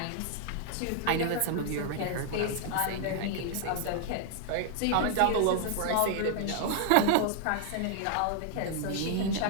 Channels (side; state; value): both; different; correlation 0.00